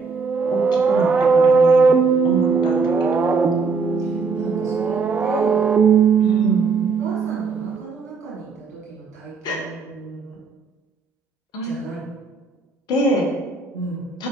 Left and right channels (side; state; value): left; quieter; 4.7 dB